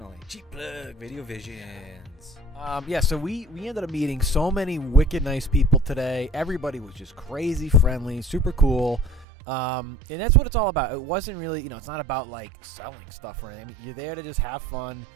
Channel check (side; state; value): left; drops out; at 9.2 s